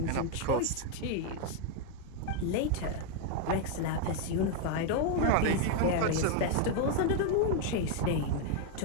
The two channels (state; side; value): different; both; correlation 0.01